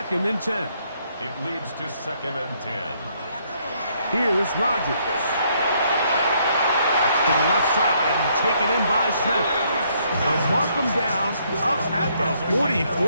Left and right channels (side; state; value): both; inverted; correlation -0.70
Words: and 10. It leads to 2nd and 10. Here's Rodgers. That's to the left side and taken in by Smith. They'll mark him down up at the